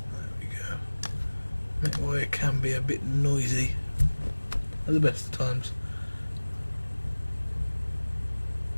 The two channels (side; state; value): both; inverted; correlation -1.00